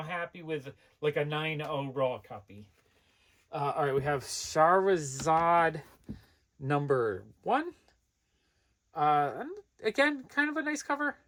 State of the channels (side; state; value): both; identical; correlation 1.00